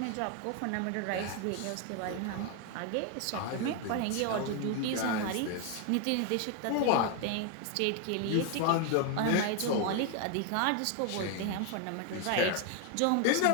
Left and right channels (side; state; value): both; different; correlation 0.01